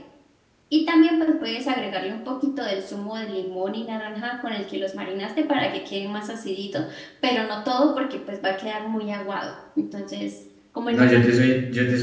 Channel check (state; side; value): identical; both; correlation 1.00